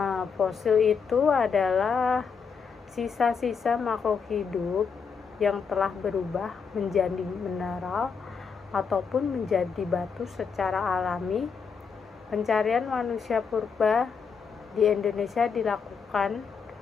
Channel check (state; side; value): quieter; right; 5.9 dB